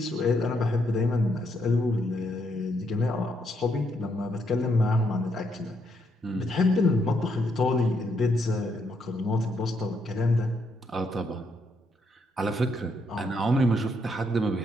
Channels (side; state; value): both; normal; correlation 0.76